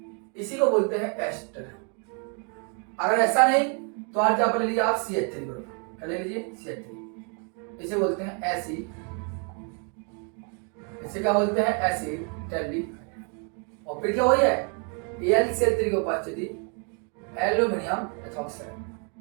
इसी को बोलते हैं एस्टर। अगर ऐसा नहीं तो आज क्या ले लीजिए आप CH3 बराबर, क्या ले लीजिए CH3, इसे बोलते हैं एसिड, इसे क्या बोलते हैं एसिड टेल्डिहाइड। और फिर क्या हो है AlCl3 की उपस्थिति एल्यूमिनियम एथॉक्साइड,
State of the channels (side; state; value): left; quieter; 39.1 dB